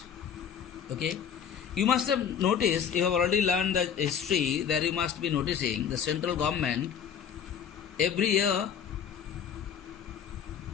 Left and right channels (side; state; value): right; quieter; 7.9 dB